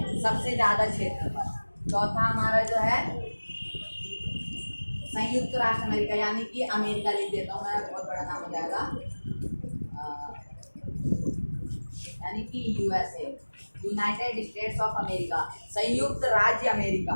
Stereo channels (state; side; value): inverted; both; correlation -1.00